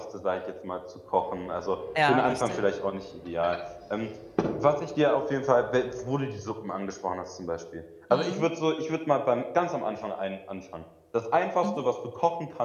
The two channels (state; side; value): identical; both; correlation 1.00